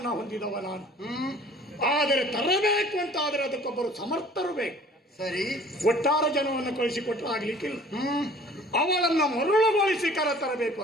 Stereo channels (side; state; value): both; normal; correlation 0.50